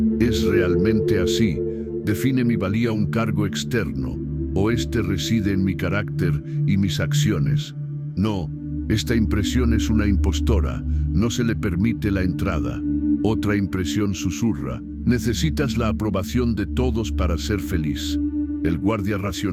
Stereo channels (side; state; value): both; identical; correlation 1.00